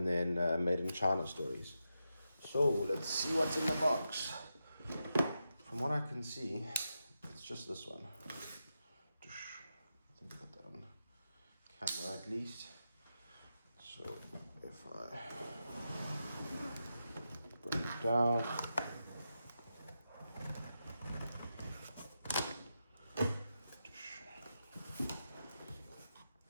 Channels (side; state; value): both; inverted; correlation -0.88